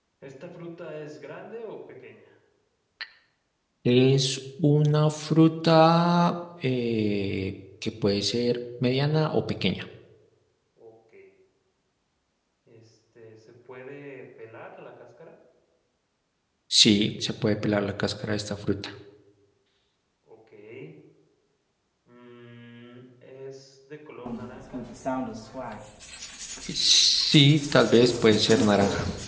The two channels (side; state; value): both; identical; correlation 1.00